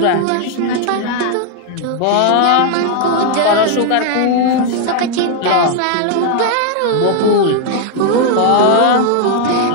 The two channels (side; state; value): both; different; correlation 0.00